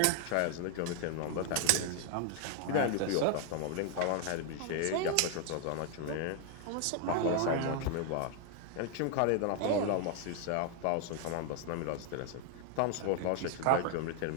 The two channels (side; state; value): both; different; correlation 0.00